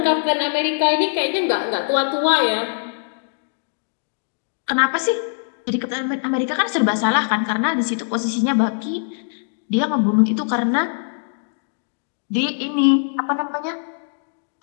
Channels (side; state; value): right; silent; digital silence